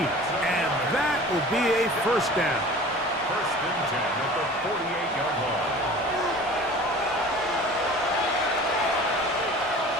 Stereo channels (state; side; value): normal; both; correlation 0.42